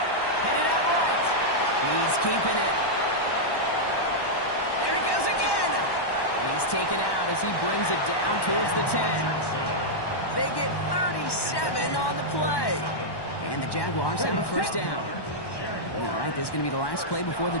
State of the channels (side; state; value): right; late; 1.1 ms